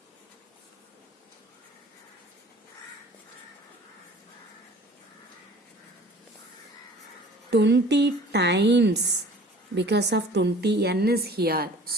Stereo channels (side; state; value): both; normal; correlation 0.47